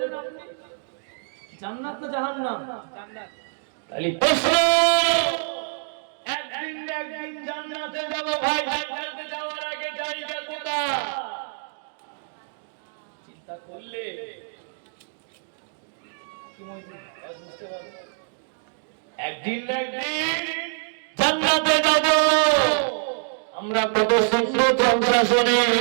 আপনি, জান্নাত না জাহান্নাম? জান্নাত। তাহলে প্রশ্ন, একদিন না একদিন জান্নাতে যাব ভাই, জান্নাতে যাওয়ার আগে জায়গা কোথায় চিন্তা করলে কি মনে বুঝতে পারবেন? একদিন না একদিন জান্নাতে যাব। আমরা কত সুন্দর জলসা শুনি,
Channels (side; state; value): left; silent; digital silence